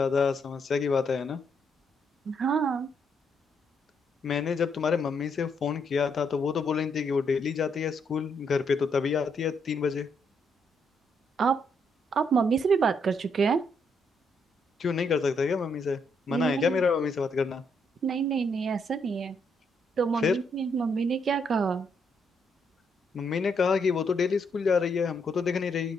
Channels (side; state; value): both; normal; correlation 0.75